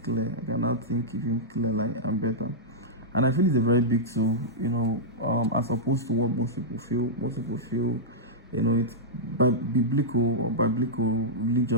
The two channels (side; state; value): both; normal; correlation -0.10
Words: clear. I can now think even clearer and better. And I feel it's a very big tool, as opposed to what most people feel. Most people feel, it's biblical or